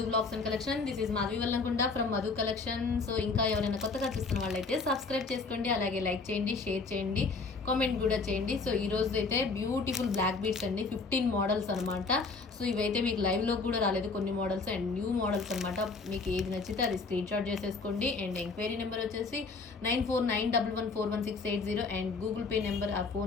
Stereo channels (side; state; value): right; quieter; 4.2 dB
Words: blogs and collection. This is Madhavi Vallamkunda from Madhu collection. So ఇంకా ఎవరైనా కొత్తగా చూస్తున్న వాళ్ళైతే సబ్స్క్రైబ్ చేసుకోండి, అలాగే లైక్ చేయండి, షేర్ చేయండి, కామెంట్ కూడా చేయండి. సో ఈ రోజు అయితే బ్యూటిఫుల్ బ్లాక్ బీడ్స్ అండి, 15 మోడల్స్ అనమాట. సో ఇవైతే మీకు లైవ్లో కూడా రాలేదు, కొన్ని మోడల్స్ అండ్ న్యూ మోడల్స్ అనమాట. మీకు ఏది నచ్చితే అది స్క్రీన్ షాట్ చేసేసుకోండి. అండ్ ఎంక్వైరీ నెంబర్ వచ్చేసి 9491114160 అండ్ గూగుల్ పే నెంబర్ ఆ